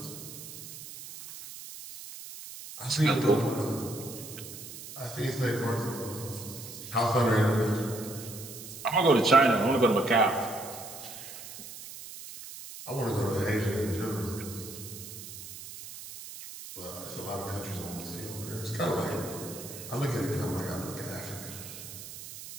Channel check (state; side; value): noise; right; hiss, 12 dB below the sound